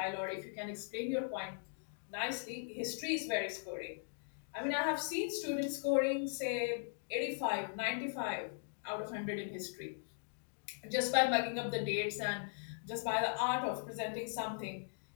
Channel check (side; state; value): right; silent; digital silence